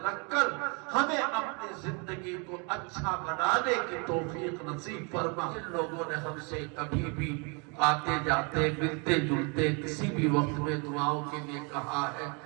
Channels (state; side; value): quieter; left; 33.7 dB